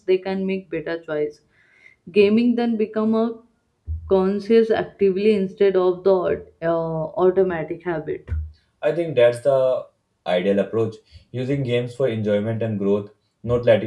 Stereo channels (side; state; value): both; identical; correlation 1.00